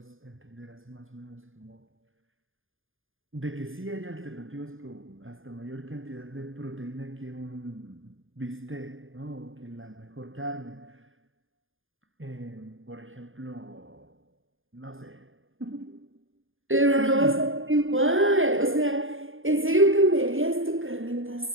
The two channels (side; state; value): left; late; 0.59 ms